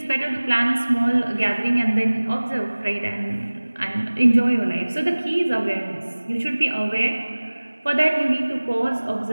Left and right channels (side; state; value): both; inverted; correlation -1.00